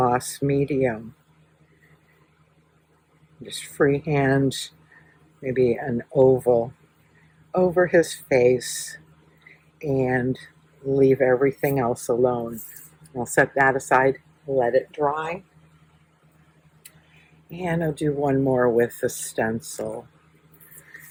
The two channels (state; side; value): identical; both; correlation 1.00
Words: medium. Just freehand maybe an oval over his face and leave everything else alone. I'll set that aside, let it dry. And I'll do one more with the stencil.